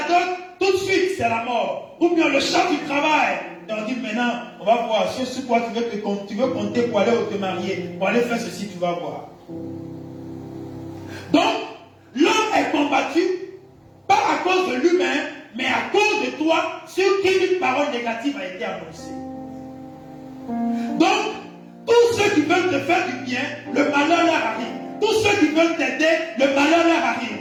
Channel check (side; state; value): both; identical; correlation 1.00